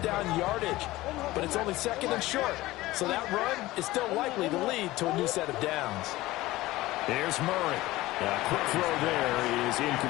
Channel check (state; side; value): quieter; right; 18.1 dB